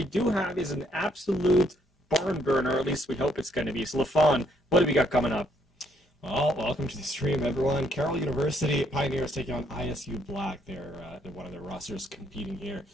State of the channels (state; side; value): normal; both; correlation 0.70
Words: do have is an absolute barn burner, or at least we hope it's going to be. So LaFawn, what do we got coming up? Well, welcome to the stream, everyone. Carroll University Pioneers taking on ISU Black. They're one of their rosters competing here